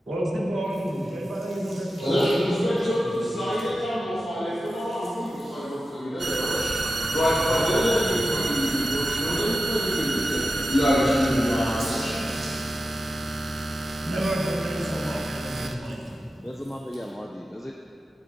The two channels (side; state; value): both; normal; correlation 0.92